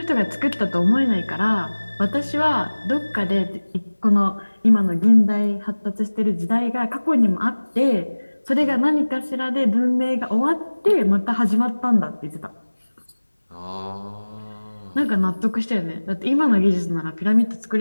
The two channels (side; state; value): both; inverted; correlation -1.00